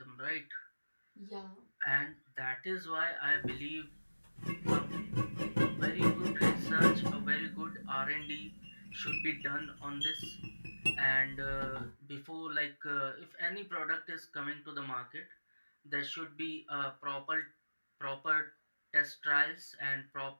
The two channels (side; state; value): both; inverted; correlation -1.00